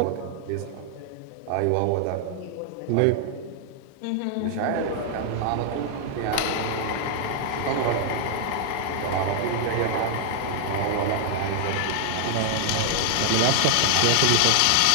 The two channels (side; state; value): both; different; correlation -0.01